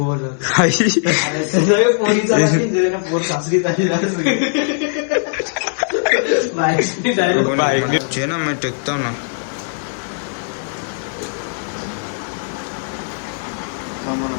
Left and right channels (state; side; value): silent; right; 67 dB below the other